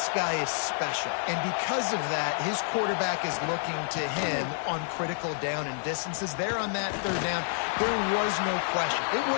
guy is special, and because of that, his quarterback is looking to him on critical down and distances. There on that 3rd down, there was no question. It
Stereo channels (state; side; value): silent; right; digital silence